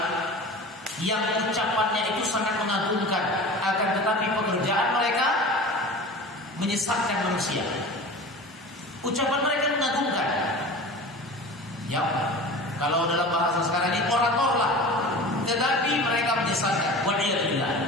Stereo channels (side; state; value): both; normal; correlation 0.36